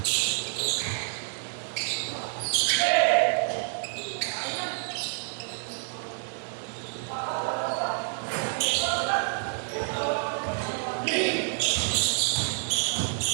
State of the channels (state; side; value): silent; left; digital silence